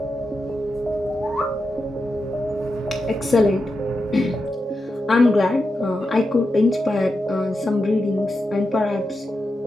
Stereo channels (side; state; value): both; normal; correlation 0.88